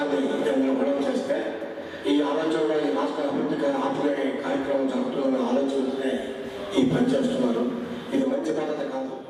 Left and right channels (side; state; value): both; identical; correlation 1.00